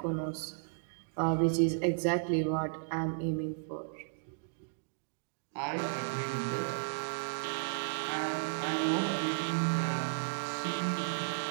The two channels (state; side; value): silent; left; digital silence